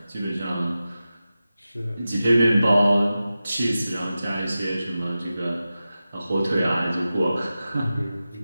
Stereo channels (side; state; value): both; inverted; correlation -0.94